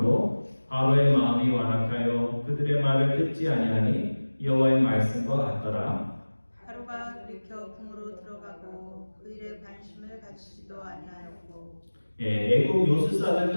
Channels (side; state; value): both; inverted; correlation -1.00